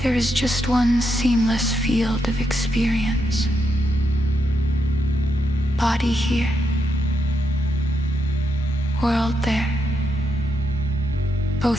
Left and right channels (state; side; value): normal; both; correlation 0.82